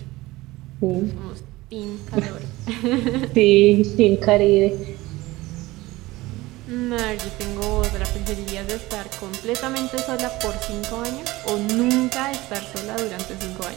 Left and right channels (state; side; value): quieter; left; 19.5 dB